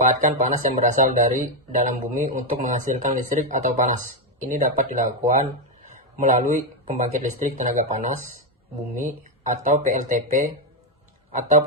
panas yang berasal dari dalam bumi untuk menghasilkan listrik atau panas. Ini dapat dilakukan melalui pembangkit listrik tenaga panas bumi atau PLTP atau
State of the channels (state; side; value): normal; both; correlation 0.04